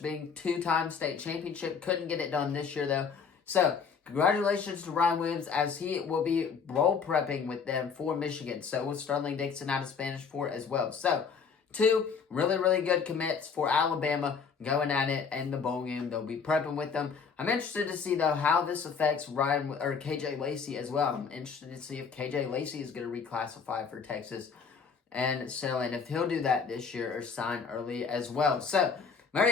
being 2-time state championship. Couldn't get it done this year, though. So, congratulations to Ryan Williams, as he will be role prepping with them for Michigan. So, with Sterling Dixon out of Spanish Fort as well. So, 2 really, really good commits for Alabama going at it in the bowl game. They'll be prepping with them. I'm interested to see, though, how this affects KJ Lacey as well. I'm interested to see if KJ Lacey is going to reclassify for Texas and if he'll do that this year or sign early as well. So,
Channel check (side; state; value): right; quieter; 5.8 dB